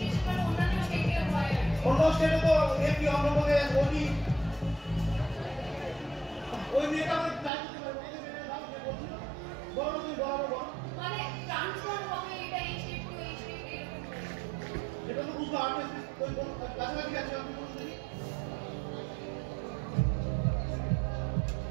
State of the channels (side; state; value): left; drops out; at 7.5 s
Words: অন্যান্য স্টেটে হয়। অন্য স্টেটে তো এমপি, অন্ধ্রপ্রদেশ, ওডি। ওই মেয়েটা আমরা ট্রাই করতে পারবো। এই যে মেয়েটার নাম যে বলছিল, বলো তুমি, বলো। মানে ট্রান্সফার হবে, এটা এই স্টেট টু এই স্টেট এরকম। এটা তো বুঝতে পারবে, ওই কাছাকাছি আছে, আপনি বলুন দেখি।